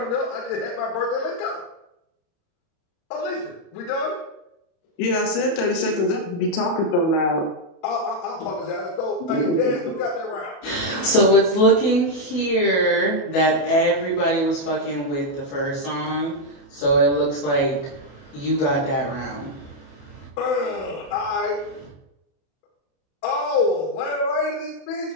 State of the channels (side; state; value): right; late; 30 ms